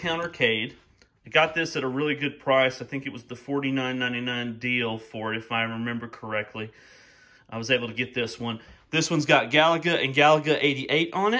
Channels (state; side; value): identical; both; correlation 1.00